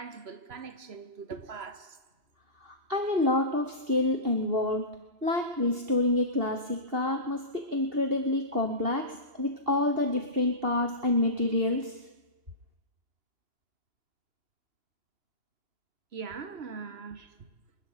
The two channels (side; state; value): left; late; 2.7 ms